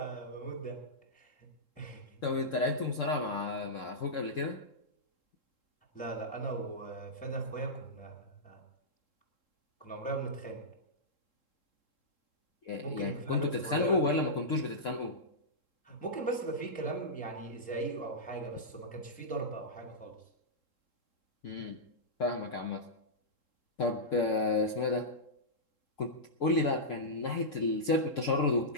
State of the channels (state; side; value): late; right; 3.7 ms